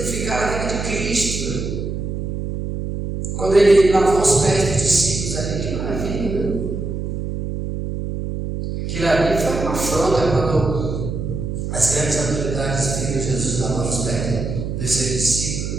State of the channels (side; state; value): right; noise; hum, 4 dB below the sound